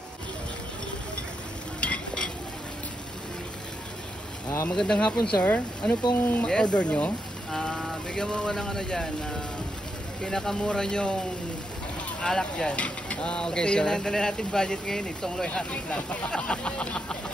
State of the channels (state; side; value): normal; both; correlation 0.82